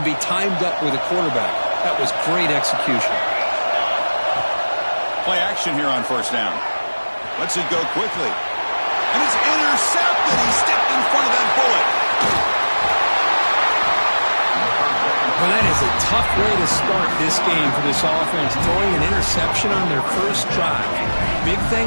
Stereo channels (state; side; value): inverted; both; correlation -1.00